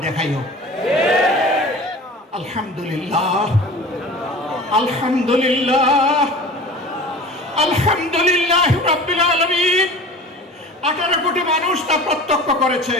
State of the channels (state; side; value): normal; both; correlation 0.38